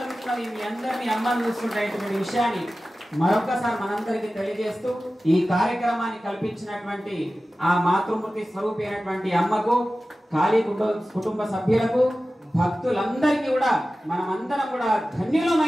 మీ అందరినీ అమ్మని చూసుకుంటున్నటువంటి విషయాన్ని మరొకసారి మనందరికీ తెలియజేస్తూ, ఈ కార్యక్రమాన్ని కల్పించినటువంటి ఆ మాతృమూర్తి స్వరూపి అయినటువంటి అమ్మకు, కాళీ కుటుంబ సభ్యులకు, భక్తులందరికీ కూడా మనమందరం కూడా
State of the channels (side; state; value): both; normal; correlation 0.95